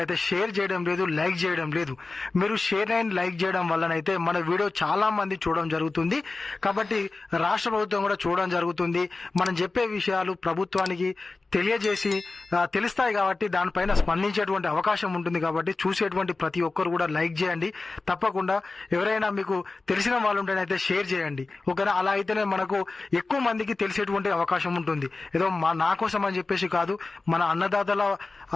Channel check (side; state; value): right; quieter; 3.6 dB